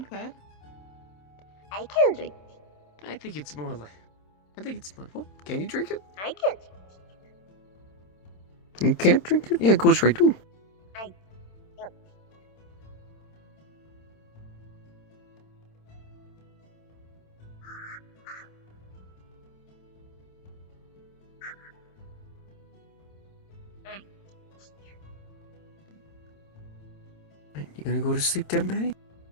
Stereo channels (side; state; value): right; late; 27 ms